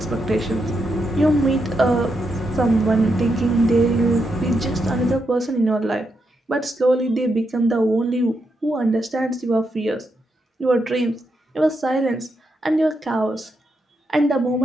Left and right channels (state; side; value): normal; both; correlation 0.82